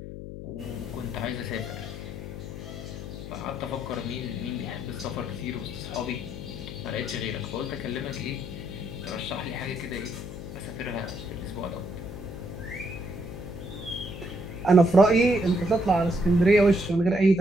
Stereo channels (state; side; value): noise; left; hum, 9 dB below the sound